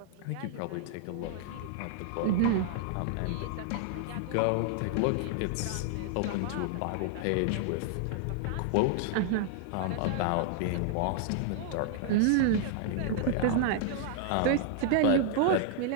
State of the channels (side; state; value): both; different; correlation -0.01